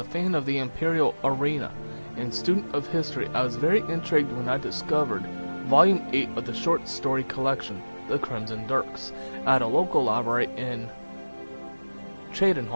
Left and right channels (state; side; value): inverted; both; correlation -1.00